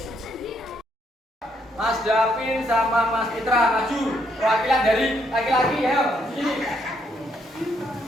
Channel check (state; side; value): normal; both; correlation 0.73